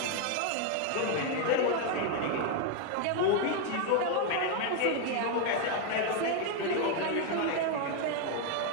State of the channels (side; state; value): both; different; correlation 0.01